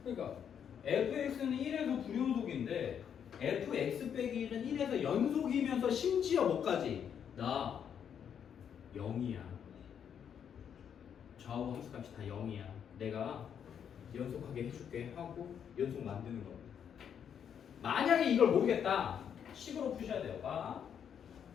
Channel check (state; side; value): quieter; right; 8.2 dB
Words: 그러니까 fx는 1에서 불연속인데 fx 빼기 1은 1에서 연속이면서 심지어 뭐까지? 나 0이야. 좌우 함수값이 다 0이야. 내가 연속하게 해줄게 하고 연속 만드는 겁니다. 만약에 이걸 모르겠다. 식으로 푸셔야 돼요. 봐.